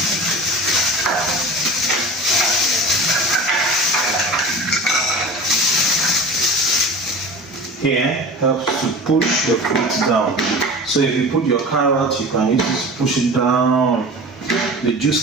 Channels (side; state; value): both; normal; correlation 0.35